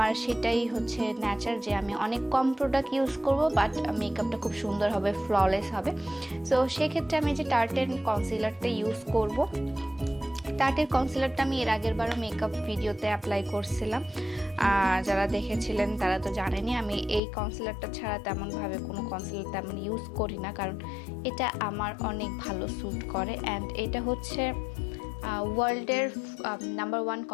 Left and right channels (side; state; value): right; drops out; at 17.2 s